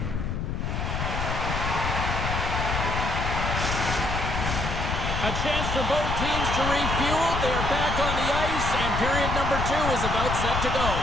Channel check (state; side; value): noise; left; rumble, 2 dB below the sound